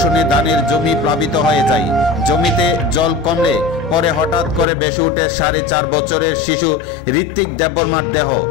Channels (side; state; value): right; drops out; at 4.7 s